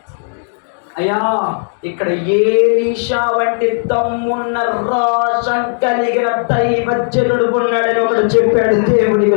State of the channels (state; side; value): silent; right; 58 dB below the other